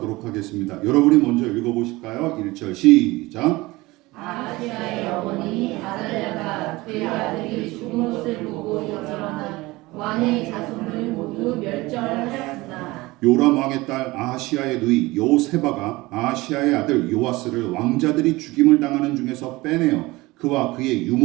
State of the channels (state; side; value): quieter; left; 20.8 dB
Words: 하겠습니다. 여러분이 먼저 읽어보실까요? 1절 시작. 아하시아의 어머니 아달랴가 그의 아들이 죽은 것을 보고 일어나 왕의 자손을 모두 멸절하였으나 요람 왕의 딸 아하시아의 누이 여호세바가 아하시아의 아들 요아스를 왕자들이 죽임을 당하는 중에서 빼내어 그와 그의